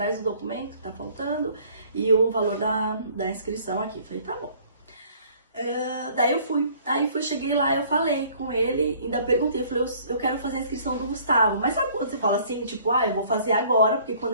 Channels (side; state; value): both; inverted; correlation -0.56